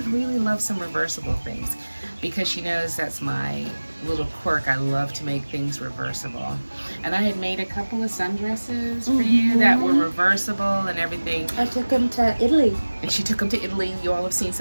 really love some reversible things," because she knows that's my little quirk. I love to make things reversible. And I had made a couple of sundresses for you that were reversible and everything. I took them to Italy. And she took them to Italy. You all have seen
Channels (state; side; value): inverted; both; correlation -1.00